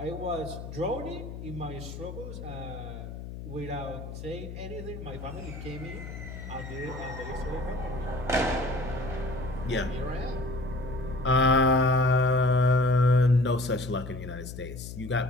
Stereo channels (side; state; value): left; noise; hum, 10 dB below the sound